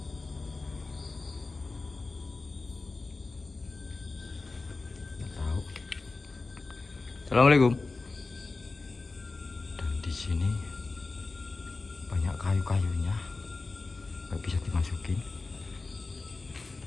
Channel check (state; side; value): quieter; right; 3.7 dB